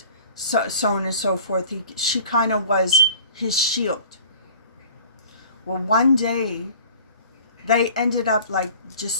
so on and so forth. She kind of was his shield. Well, one day, they ended up like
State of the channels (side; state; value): both; inverted; correlation -0.46